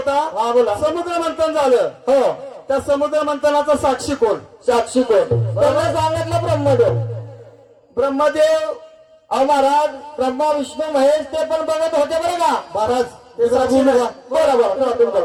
हा बोला. समुद्र मंथन झालं. हो त्या समुद्र मंथनाचा साक्षी कोण? साक्षी कोण? त्यांना सांगितलं ब्रह्मदेव. ब्रह्मदेव. अहो महाराज ब्रह्मा विष्णू महेश ते पण बघत होते बरं का महाराज ते साक्षी बोलू नाही. का?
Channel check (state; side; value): identical; both; correlation 1.00